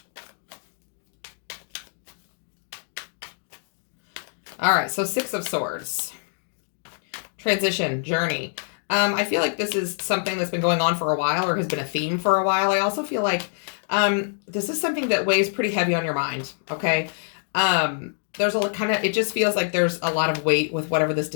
All right, so Six of Swords. Transition, journey. I feel like this is something that's been going on for a while or has been a theme for a while. I also feel like this is something that weighs pretty heavy on your mind, okay? There's a kind of, it just feels like there's a lot of weight with whatever this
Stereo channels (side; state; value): right; silent; digital silence